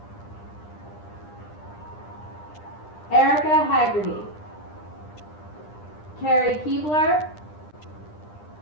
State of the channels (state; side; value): late; right; 9.9 ms